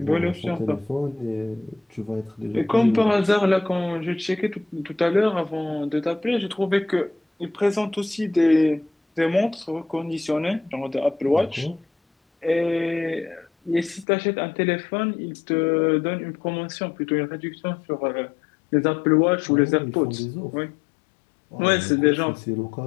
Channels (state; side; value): drops out; right; at 14.1 s